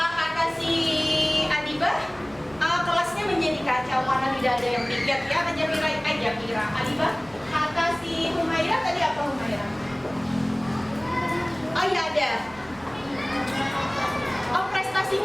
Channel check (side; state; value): right; noise; hum, 24 dB below the sound